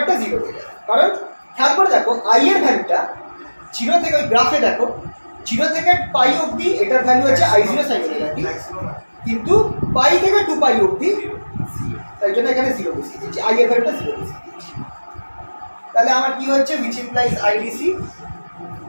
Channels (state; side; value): inverted; both; correlation -1.00